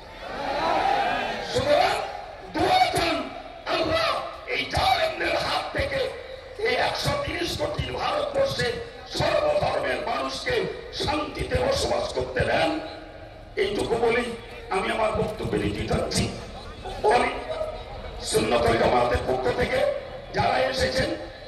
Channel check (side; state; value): both; identical; correlation 1.00